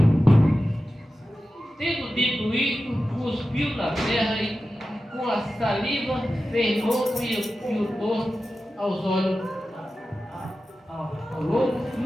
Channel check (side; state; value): both; normal; correlation 0.93